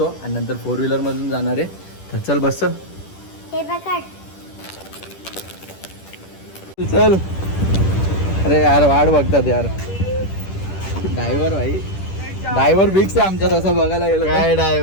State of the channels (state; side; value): late; right; 10 ms